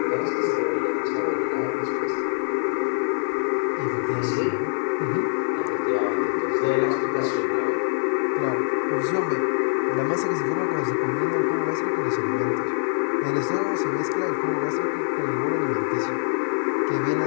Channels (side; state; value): right; silent; digital silence